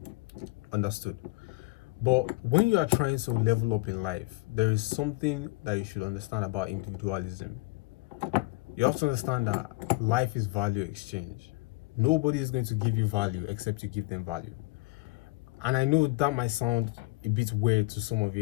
Understood. But when you are trying to level up in life, there is something that you should understand about individualism. You have to understand that life is value exchange. Nobody is going to give you value except you give them value. And I know that might sound a bit weird to some of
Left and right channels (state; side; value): quieter; right; 23.9 dB